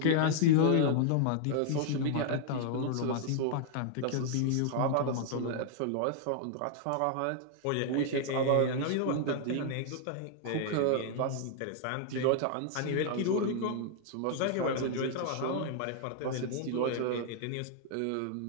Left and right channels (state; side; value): different; both; correlation 0.00